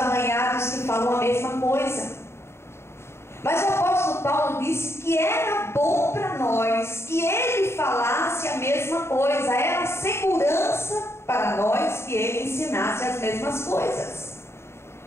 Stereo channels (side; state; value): right; late; 0.12 ms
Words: que falam a mesma coisa. Mas o apóstolo Paulo disse que era bom para nós que ele falasse a mesma coisa, era segurança para nós que ele ensinasse as mesmas coisas.